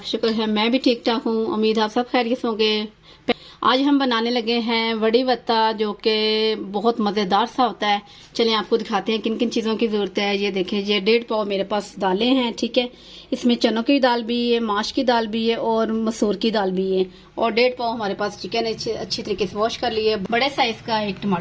शुक्र है मैं भी ठीक ठाक हूँ। उम्मीद आप सब खैरियत होंगे। आज हम बनाने लगे हैं वड़ी वत्ता, जो कि बहुत मज़ेदार सा होता है। चलें आपको दिखाते हैं किन किन चीज़ों की ज़रूरत है। ये देखें, ये 1.5 पाव मेरे पास दालें हैं। ठीक है, इसमें चनों की दाल भी है, माश की दाल भी है और मसूर की दाल भी है। और 1.5 पाव हमारे पास चिकन है, अच्छी तरीके से वॉश कर लिए। बड़े साइज़ का एक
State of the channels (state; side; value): identical; both; correlation 1.00